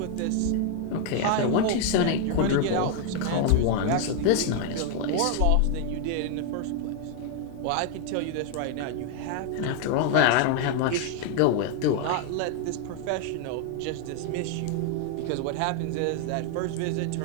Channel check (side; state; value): both; different; correlation 0.00